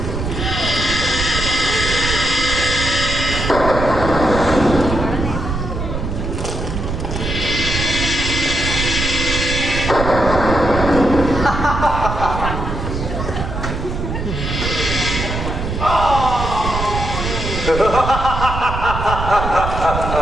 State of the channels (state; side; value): noise; right; rumble, 4 dB below the sound